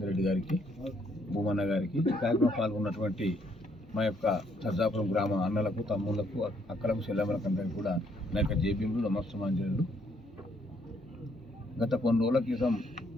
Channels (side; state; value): both; normal; correlation 0.69